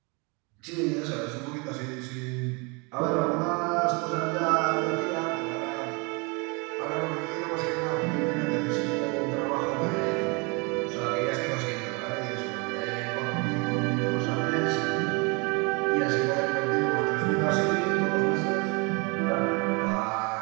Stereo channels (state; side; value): quieter; left; 30.3 dB